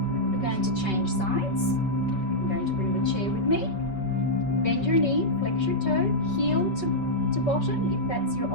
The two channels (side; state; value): right; late; 5.2 ms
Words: We're going to change sides. I'm going to bring the chair with me. Bend your knee, flex your toe, heel to bottom if that's your